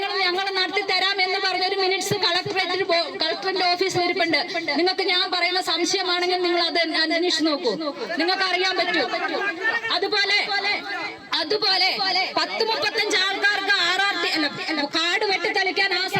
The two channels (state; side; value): identical; both; correlation 1.00